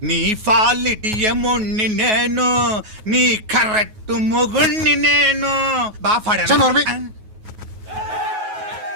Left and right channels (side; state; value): left; late; 9.4 ms